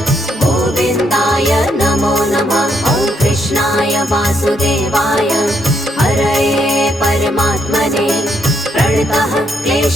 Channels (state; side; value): normal; both; correlation 0.75